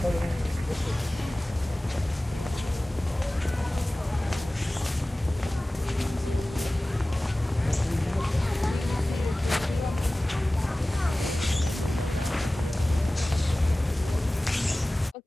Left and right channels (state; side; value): normal; both; correlation 0.98